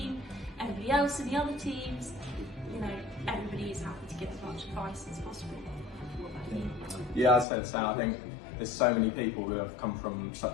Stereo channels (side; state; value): right; drops out; at 7.5 s